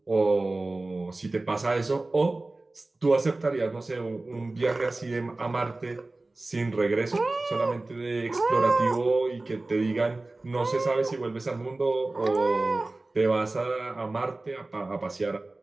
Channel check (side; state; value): left; quieter; 3.1 dB